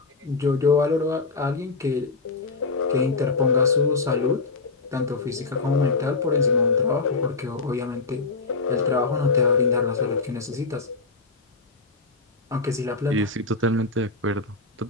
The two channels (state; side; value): quieter; right; 4.0 dB